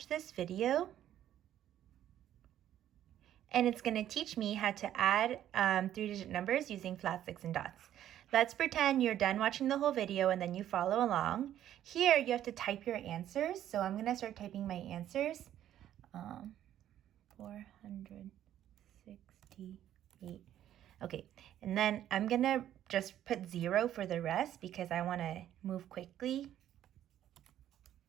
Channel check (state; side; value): quieter; left; 11.6 dB